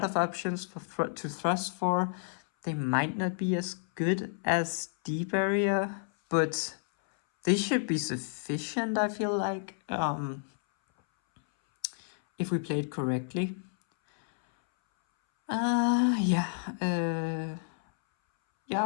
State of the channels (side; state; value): right; silent; 58 dB below the other